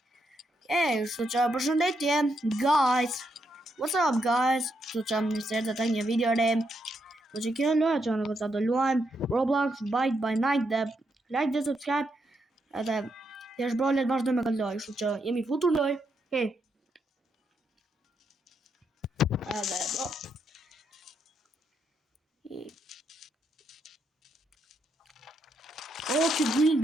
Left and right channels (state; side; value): normal; both; correlation 0.80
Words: kështu që përshëndetje, guys. What's up, guys? Kështu që më njësër të të një video re. Kështu që kjo loja që në kësa do luajmë Roblox Bite by Night dhe like dhe subscribe edhe të është brolet vazhdo me këtë loj. Kështu që jemi futur loj. Hey. Edhe bro. Oh, që green